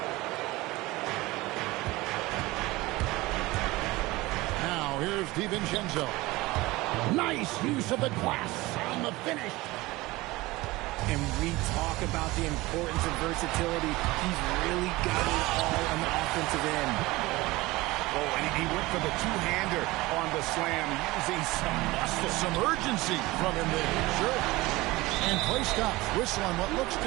Now here's DiVincenzo. Nice use of the glass on the finish. And we talk about the importance of versatility. He's really got it all on the offensive end. Oh, and he went for the two-hander on the slam, using some muscle. Some urgency from him there. Sure. And play stops. Whistle on what looks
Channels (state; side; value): quieter; left; 20.4 dB